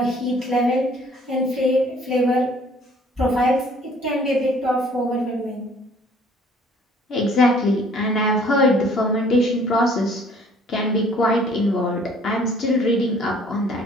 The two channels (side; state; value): both; normal; correlation 0.56